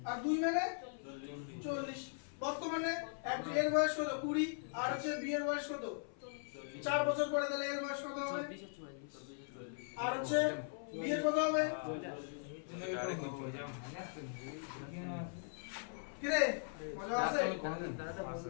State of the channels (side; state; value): right; silent; 51 dB below the other